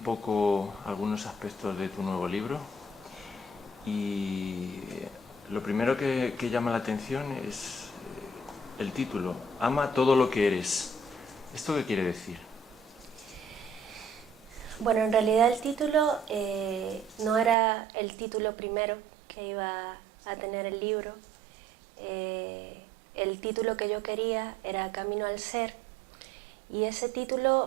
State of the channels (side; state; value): left; drops out; at 17.6 s